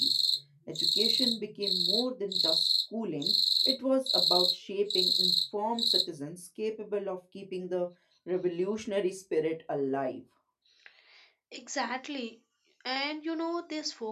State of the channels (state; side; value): identical; both; correlation 1.00